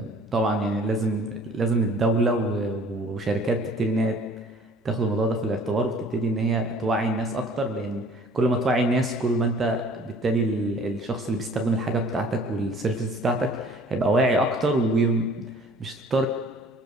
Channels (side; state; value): both; normal; correlation 0.51